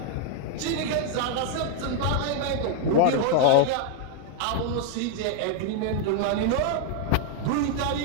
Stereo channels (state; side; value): different; both; correlation 0.00